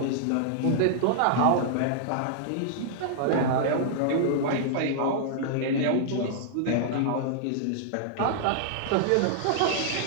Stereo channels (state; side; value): different; both; correlation -0.01